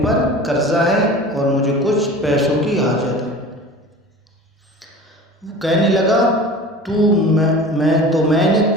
قرضہ ہے اور مجھے کچھ پیسوں کی حاجت ہے۔ وہ کہنے لگا میں نے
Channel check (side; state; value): both; normal; correlation 0.39